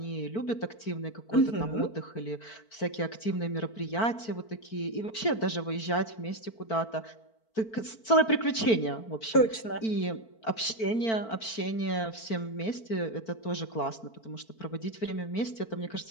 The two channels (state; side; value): late; right; 4.5 ms